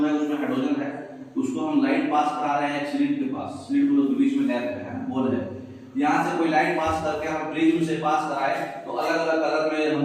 है, उसमें हाइड्रोजन है, उसको हम लाइट पास करा रहे हैं स्लिट के पास, स्लिट के बीच में गैप है, बोल है, यहाँ से कोई लाइट पास करके हम प्रिज्म से पास कराए तो अलग अलग कलर में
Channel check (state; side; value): identical; both; correlation 1.00